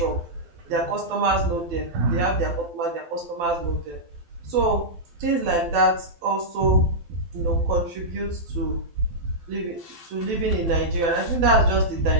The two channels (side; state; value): left; late; 12 ms